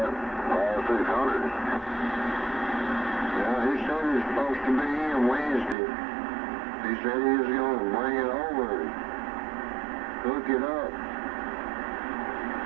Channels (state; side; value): drops out; left; at 5.8 s